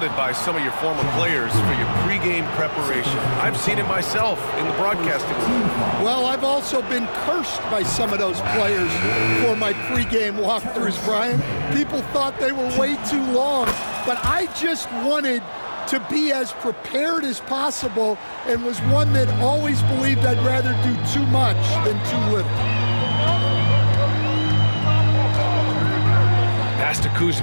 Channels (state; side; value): inverted; both; correlation -1.00